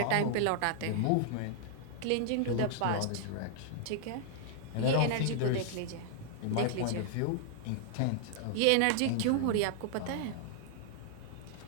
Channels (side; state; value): both; different; correlation -0.01